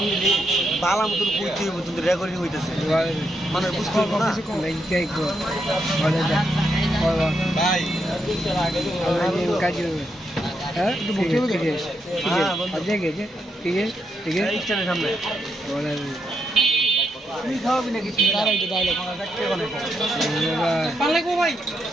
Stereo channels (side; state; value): both; normal; correlation 0.80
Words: দিলি বালা মতন কইতে হইব, কিন্তু রেকর্ডিং হইতেছে, মানে বুঝতে পারবো না। ভাই সামনে তুই খাওয়াবি নাকি?